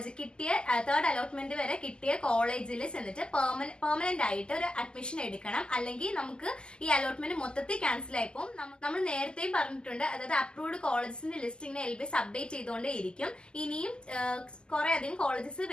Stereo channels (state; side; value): late; right; 0.048 ms